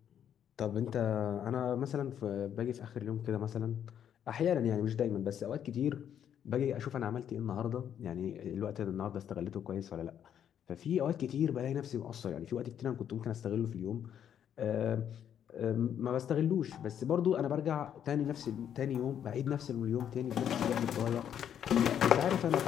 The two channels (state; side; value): quieter; right; 9.3 dB